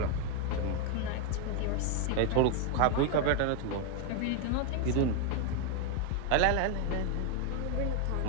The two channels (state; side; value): different; both; correlation 0.01